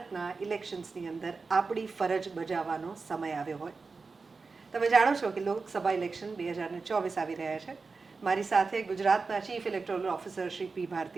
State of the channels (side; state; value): left; quieter; 4.4 dB